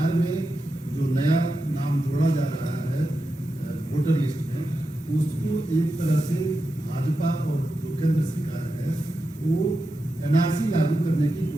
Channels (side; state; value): both; normal; correlation 0.89